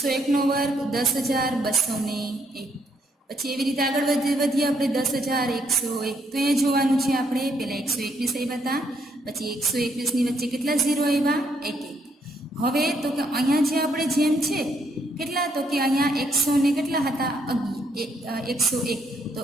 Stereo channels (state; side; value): normal; both; correlation 0.73